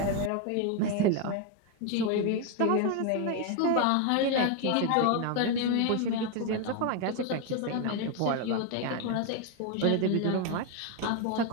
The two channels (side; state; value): both; different; correlation 0.01